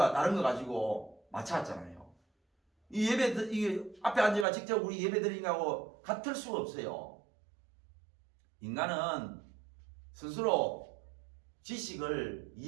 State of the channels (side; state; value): left; drops out; at 4.5 s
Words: 다른 거 가지고 맞춰왔잖아요. 이 예배, 이 앞에 앉아가 직접 우리 예배 드리는 거하고 같을 수가 없어요. 인간은 스스로 지식을